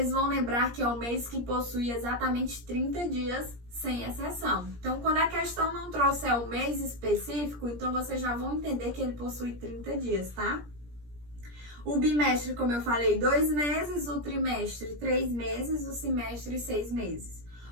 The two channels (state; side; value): late; left; 17 ms